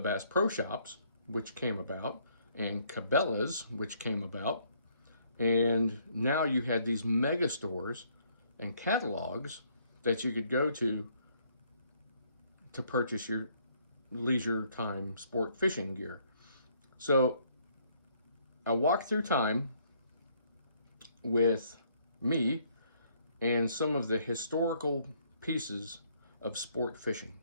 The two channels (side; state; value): both; inverted; correlation -0.67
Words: Bass Pro Shops, which came about, and Cabela's, which came about. And now you had these mega stores and catalogs that you could go to purchase your leisure time sport fishing gear. So I walked through time with me and some of the historical pieces of sport fishing.